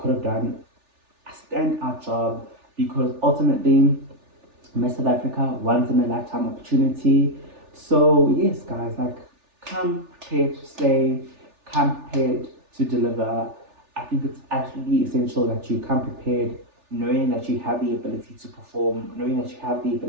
have done a standout job because ultimately Miss South Africa once in a lifetime opportunity. So yes, guys, like come prepared to slay, come prepared to deliver. I think it's absolutely essential that you come prepared, knowing that you have the ability to perform, knowing that you have the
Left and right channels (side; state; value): left; late; 3.4 ms